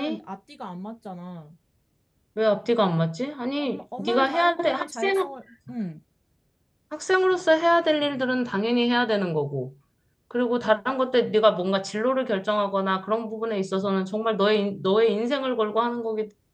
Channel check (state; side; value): identical; both; correlation 1.00